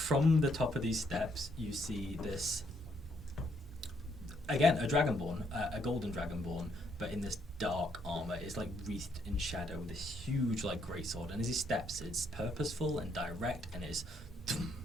the top of these steps, you see this, again, a Dragonborn, a golden Dragonborn, but in this dark armour. It's wreathed in shadow with this huge greatsword, and as he steps, it's purposeful and direct, and it's dum,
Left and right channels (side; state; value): both; normal; correlation 0.73